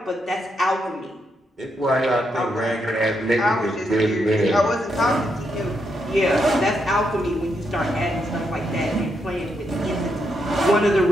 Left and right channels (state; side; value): normal; both; correlation 0.80